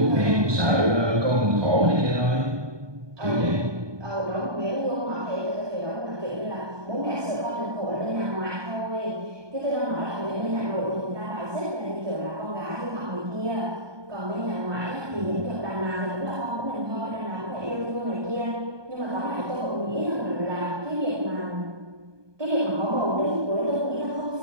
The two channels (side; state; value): left; late; 1.2 ms